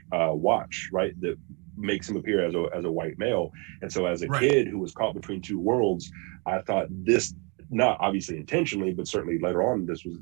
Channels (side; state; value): left; quieter; 32.5 dB